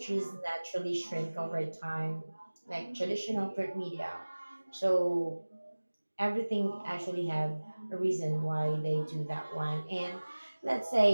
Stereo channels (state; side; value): inverted; both; correlation -1.00